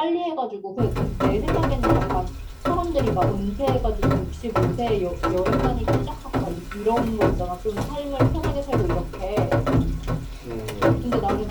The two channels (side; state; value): both; identical; correlation 1.00